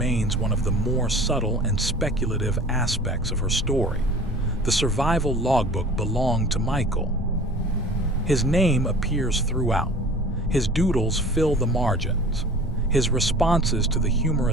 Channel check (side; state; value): both; normal; correlation 0.43